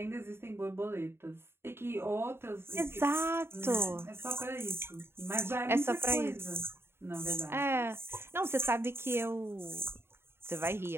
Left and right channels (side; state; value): left; late; 0.11 ms